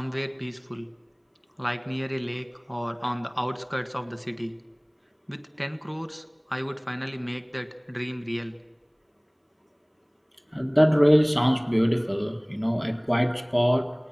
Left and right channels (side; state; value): both; identical; correlation 1.00